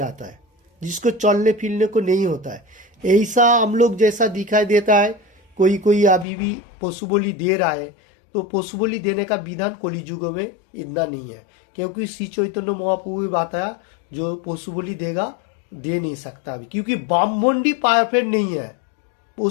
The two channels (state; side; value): drops out; right; at 6.2 s